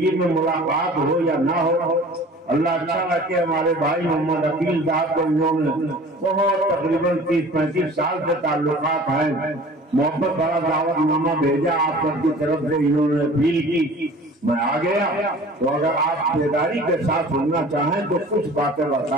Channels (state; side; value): normal; both; correlation 0.45